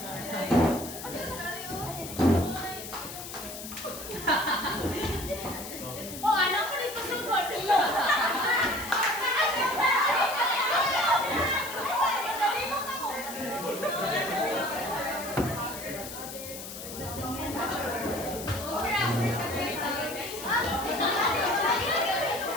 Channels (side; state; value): left; noise; hiss, 10 dB below the sound